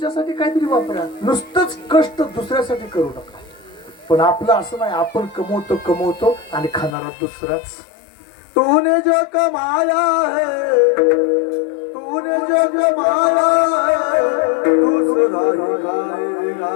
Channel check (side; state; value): right; drops out; at 7.0 s